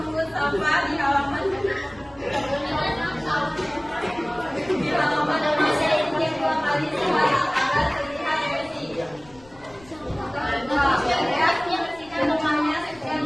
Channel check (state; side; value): noise; left; rumble, 25 dB below the sound